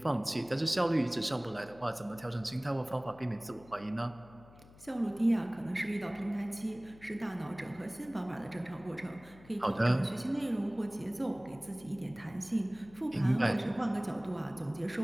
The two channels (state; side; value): noise; left; hum, 22 dB below the sound